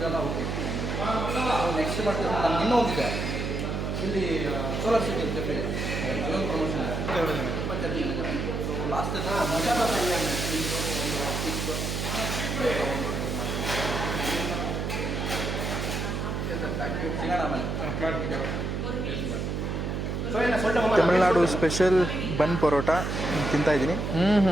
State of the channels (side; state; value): right; noise; hum, 2 dB below the sound